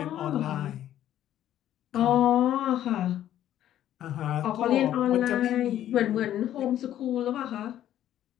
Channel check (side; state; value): right; quieter; 11.9 dB